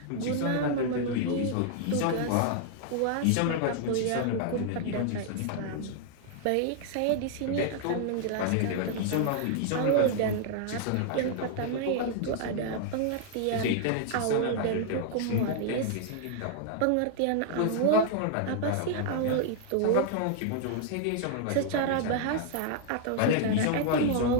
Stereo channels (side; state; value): both; different; correlation 0.00